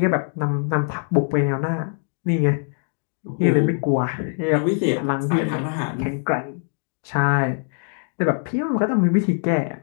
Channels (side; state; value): right; silent; 57 dB below the other